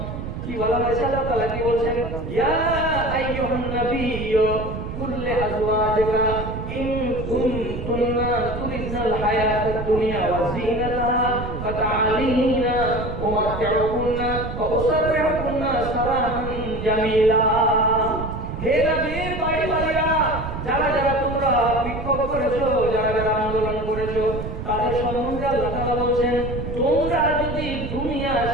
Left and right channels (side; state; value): right; noise; rumble, 6 dB below the sound